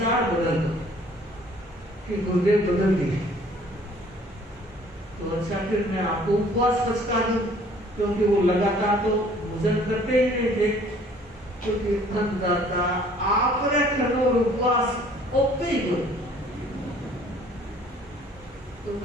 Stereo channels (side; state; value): both; normal; correlation 0.56